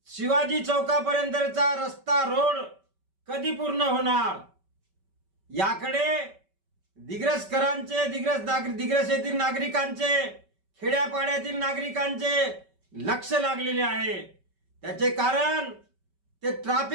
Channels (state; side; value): late; left; 5.2 ms